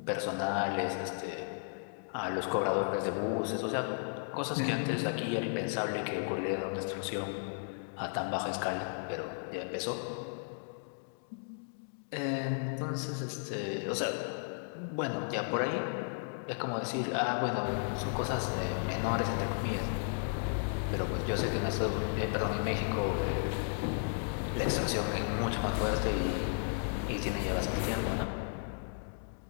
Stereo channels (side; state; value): right; silent; digital silence